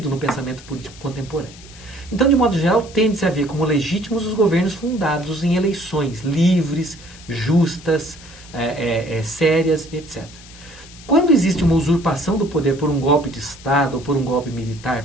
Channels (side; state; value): left; noise; hiss, 20 dB below the sound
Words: no pensamento político contemporâneo. Então, de modo geral, tende-se a ver como legítimos os governos fundados em eleições livres, justas, sérias, etc. Quando existe uma usurpação do poder por um golpe de Estado ou por um golpe militar,